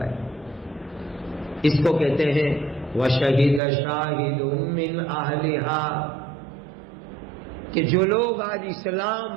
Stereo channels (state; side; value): drops out; left; at 3.6 s